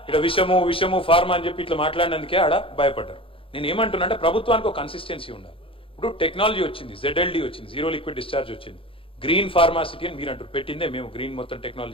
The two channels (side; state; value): right; late; 0.26 ms